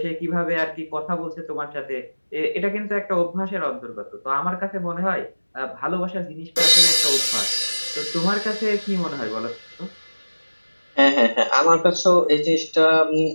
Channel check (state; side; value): inverted; both; correlation -1.00